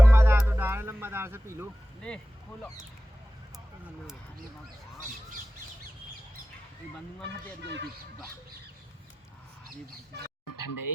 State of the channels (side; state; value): both; normal; correlation 0.94